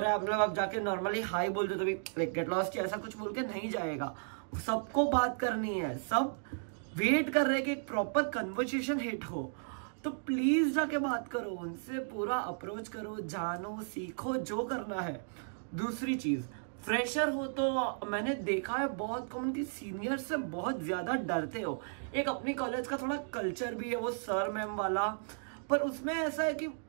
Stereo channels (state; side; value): silent; left; digital silence